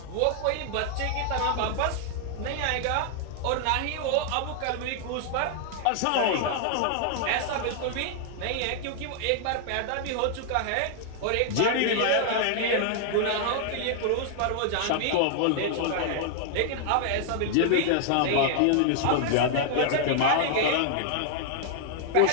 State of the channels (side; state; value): both; different; correlation 0.00